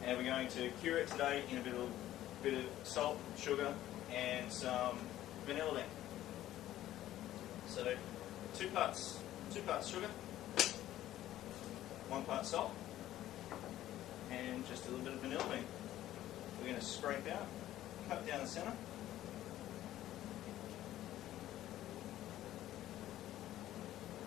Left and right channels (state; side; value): quieter; right; 13.6 dB